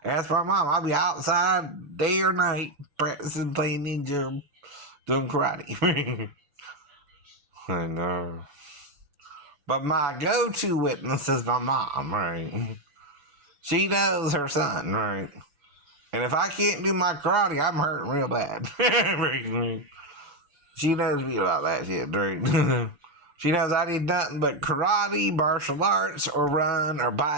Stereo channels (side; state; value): left; late; 6.9 ms